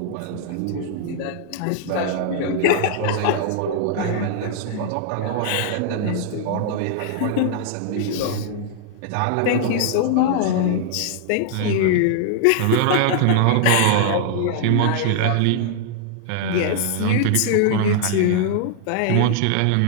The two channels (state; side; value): different; both; correlation -0.01